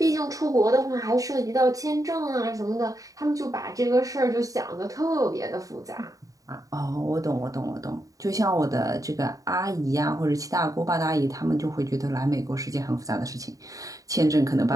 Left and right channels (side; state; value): left; late; 0.16 ms